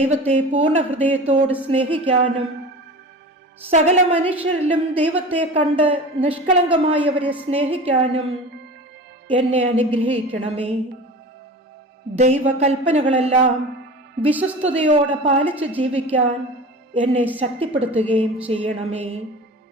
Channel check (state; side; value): normal; both; correlation 0.35